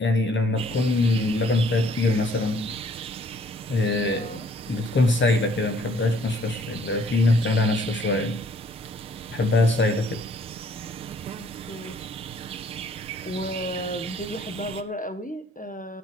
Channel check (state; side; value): normal; both; correlation 0.61